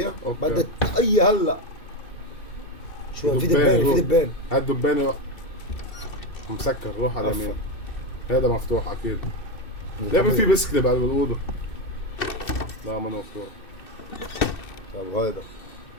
أوكي. بدك الطاقية هلا. شو في دبان هاد دبانة مسكر روح على اليمين. هذا مفتوح اكيد. ليه في بسكلي بعد بالأوضة؟ لا ما مفتوح. طيب هذا.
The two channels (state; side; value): late; right; 2.6 ms